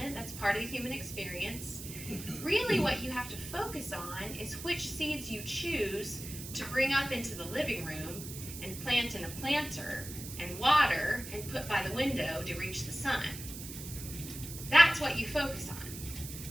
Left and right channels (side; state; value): right; noise; hiss, 10 dB below the sound